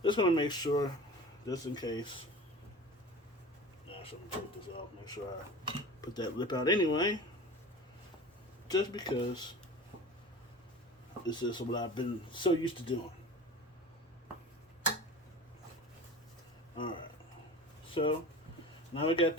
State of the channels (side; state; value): both; normal; correlation 0.36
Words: just going to make sure, just in case. Actually, let me take this off. Make sure I put that lip out anyway. Just because this is what I've been so used to doing. Alright. So, now we got